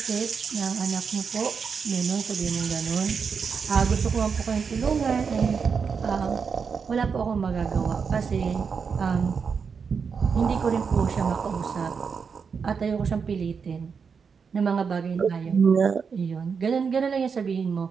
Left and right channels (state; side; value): quieter; left; 5.9 dB